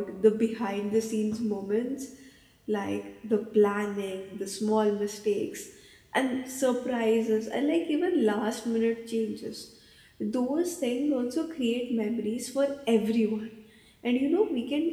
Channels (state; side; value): identical; both; correlation 1.00